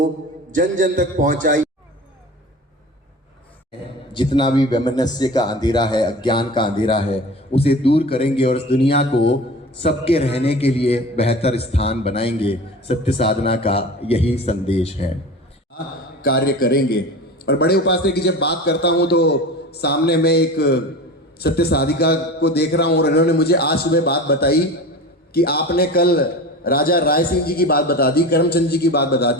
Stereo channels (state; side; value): normal; both; correlation 0.34